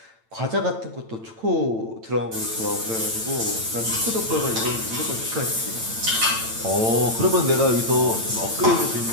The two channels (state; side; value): late; left; 8.9 ms